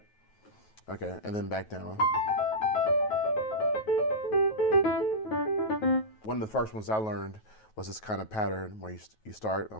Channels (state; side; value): late; right; 9.3 ms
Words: Okay, and then back down. One of the first ones I learned was this kind of pattern where you start,